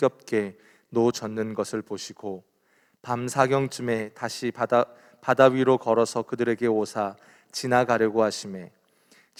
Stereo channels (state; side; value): identical; both; correlation 1.00